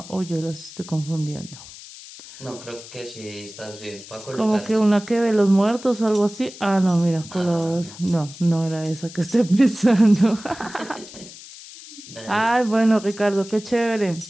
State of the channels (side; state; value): left; noise; hiss, 16 dB below the sound